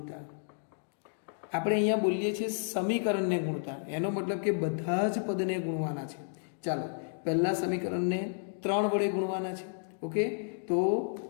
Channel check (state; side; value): silent; right; digital silence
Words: આપણે અહીંયા બોલીએ છીએ સમીકરણને ગુણતા, એનો મતલબ કે બધા જ પદને ગુણવાના છે. ચાલો, પહેલા સમીકરણને 3 વડે ગુણવાના છે. ઓકે, તો